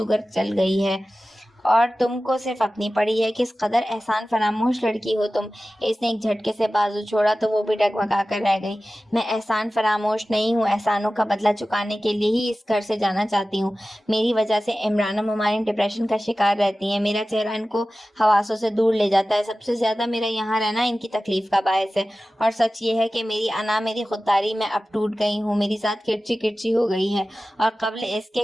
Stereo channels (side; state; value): both; normal; correlation 0.96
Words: چل گئی ہے، اور تم کو صرف اپنی پڑی ہے۔ کس قدر احسان فراموش لڑکی ہو تم۔ اس نے ایک جھٹکے سے بازو چھوڑا تو وہ بھی ڈگمگا کر رہ گئی۔ میں احسان فراموش نہیں ہوں، احسانوں کا بدلہ چکانے کے لیے ہی اس گھر سے جانا چاہتی ہوں۔ میری وجہ سے عمران و ممالین ڈپریشن کا شکار رہتی ہیں، میرا چہرہ ان کو حواسوں سے دور لے جاتا ہے۔ سب سے زیادہ میرا یہاں رہنا ان کی تکلیف کا باعث ہے، اور سچ یہ ہے کہ میری انا، میری خودداری میں اب ٹوٹ گئی ہوں، میری ذات کرچی کرچی ہو گئی ہے، اور قبل اس